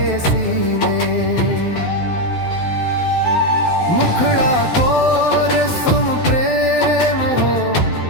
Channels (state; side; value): late; right; 12 ms